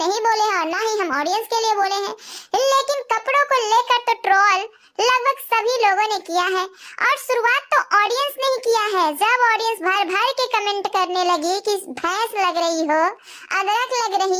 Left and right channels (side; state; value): both; identical; correlation 1.00